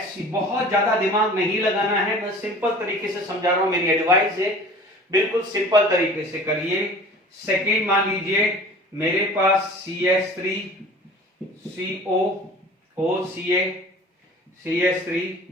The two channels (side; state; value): both; normal; correlation 0.44